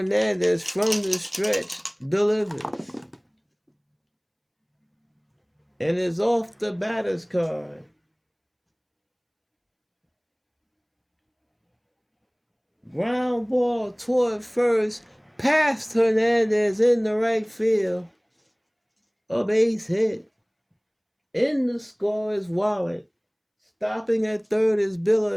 from the stretch delivers. And is off the batter's card. Ground ball toward first, past Hernandez in the right field. A base hit. In the score is Wallet. Stopping at third is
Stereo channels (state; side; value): identical; both; correlation 1.00